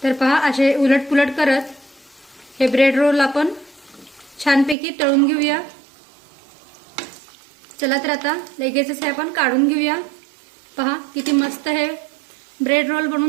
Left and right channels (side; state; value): left; drops out; at 4.8 s